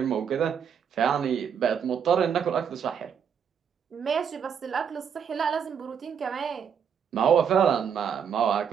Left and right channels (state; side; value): quieter; left; 7.5 dB